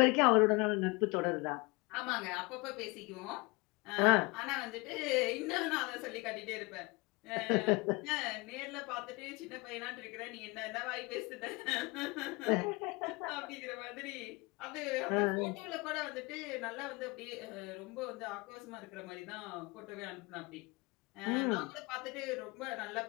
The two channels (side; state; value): right; quieter; 25.9 dB